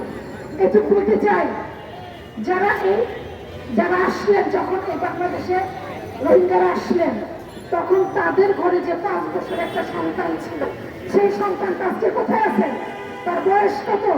এটুকু বলতে চাই, যারা আসলেন, যখন এই বাংলাদেশে রোহিঙ্গারা আসলেন, তখন তাদের ঘরে যে 5 বছরের একটা সন্তান ছিল, সেই সন্তানটা আজকে কোথায় আছেন? তার বয়স কত?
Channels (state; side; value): identical; both; correlation 1.00